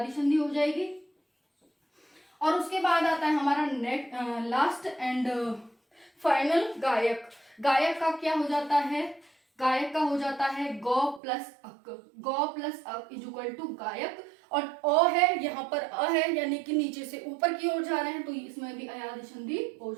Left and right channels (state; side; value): drops out; left; at 11.2 s